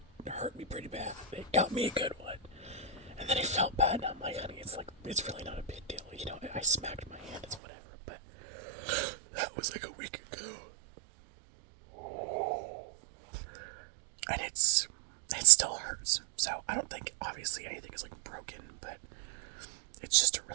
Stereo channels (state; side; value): drops out; left; at 7.6 s